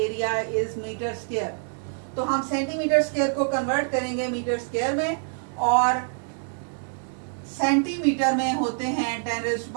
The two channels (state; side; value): silent; left; digital silence